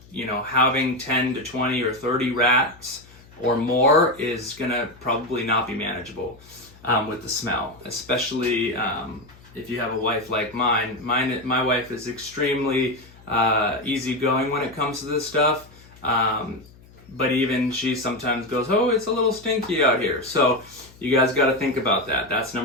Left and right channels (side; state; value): left; noise; hum, 24 dB below the sound